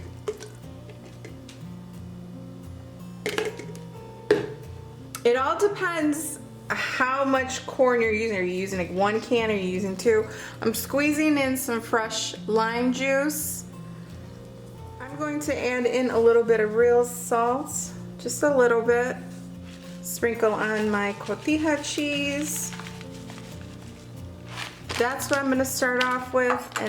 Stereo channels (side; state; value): both; identical; correlation 1.00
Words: It all depends how much corn you're using. Are you using like 1 can or are you using 2? I'm squeezing in some fresh lime juice. I'm going to add in a little bit of real salt, just a little bit. Sprinkle on my cotija cheese. That's what I'm going to start off with,